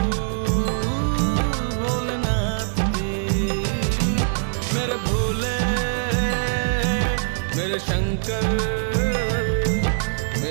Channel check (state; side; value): silent; left; digital silence